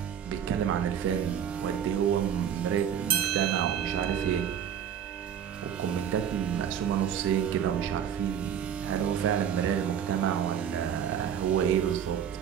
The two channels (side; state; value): left; quieter; 8.9 dB